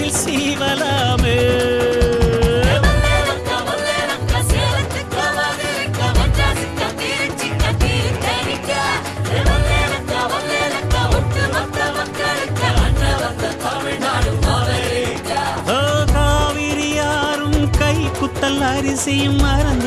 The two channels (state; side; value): identical; both; correlation 1.00